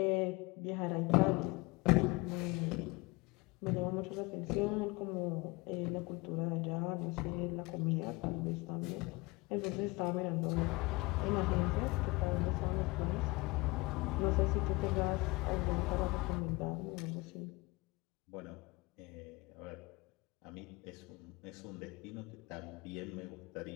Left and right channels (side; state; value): right; quieter; 24.1 dB